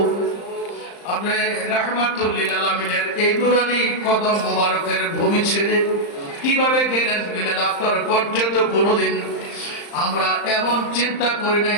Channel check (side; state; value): right; late; 35 ms